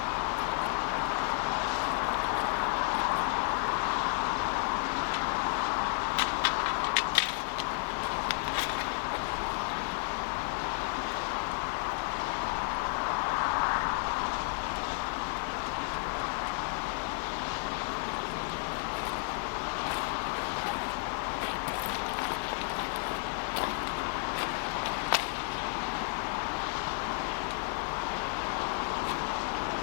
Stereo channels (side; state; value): right; quieter; 37.2 dB